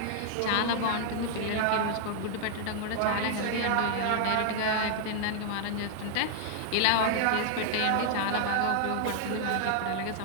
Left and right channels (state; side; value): different; both; correlation 0.00